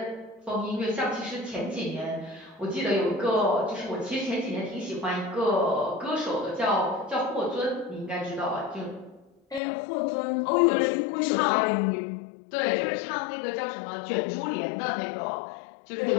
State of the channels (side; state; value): right; drops out; at 9.6 s